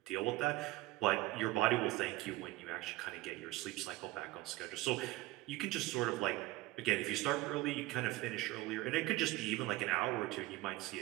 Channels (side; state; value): left; quieter; 18.5 dB